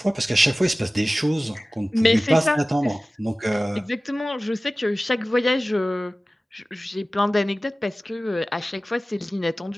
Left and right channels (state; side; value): normal; both; correlation 0.97